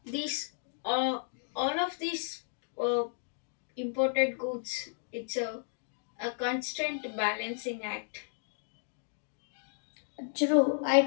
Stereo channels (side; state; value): right; silent; digital silence